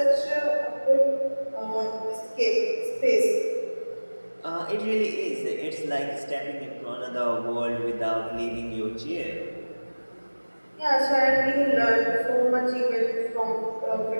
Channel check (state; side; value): inverted; both; correlation -1.00